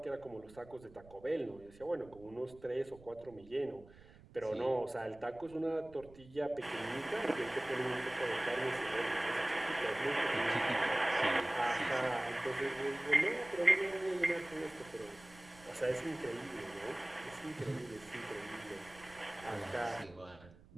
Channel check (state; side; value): noise; right; rumble, 22 dB below the sound